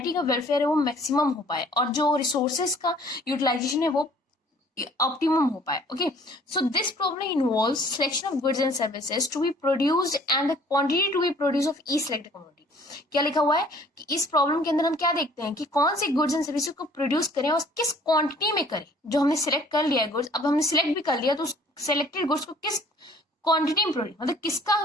का वेलफेयर है वो मैक्सिमम हो पाए और जो रिसोर्सेज का यूटिलाइजेशन है वो ऑप्टिमम हो पाए। Okay, so this problem involves selection of goods and services to be produced and the quantity to be produce of each selected commodity. क्या लिखा हुआ है कि इस प्रॉब्लम के अंदर हम क्या देखते हैं कि कौन सी गुड्स एंड सर्विसेज को प्रोड्यूस करें और किस क्वांटिटी में करें। जो हमने सिलेक्ट कर लिया है गुड्स, अब हमने सिलेक्ट भी कर लिया तो उस सिलेक्टेड गुड्स को किस क्वांटिटी में प्रोड्यूस, मतलब किसका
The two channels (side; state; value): both; normal; correlation 0.55